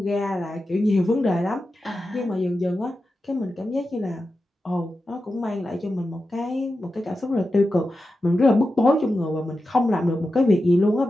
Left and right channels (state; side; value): normal; both; correlation 0.91